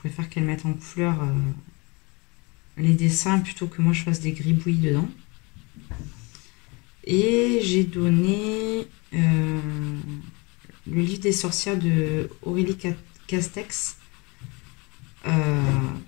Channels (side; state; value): right; quieter; 27.9 dB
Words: qu'elle mette en couleur les dessins plutôt que moi je fasse des gribouillis dedans. Et j'ai donné le livre des sorcières de Aurélie Castex